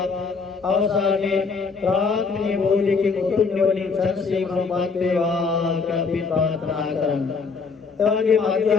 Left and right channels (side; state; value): right; quieter; 4.9 dB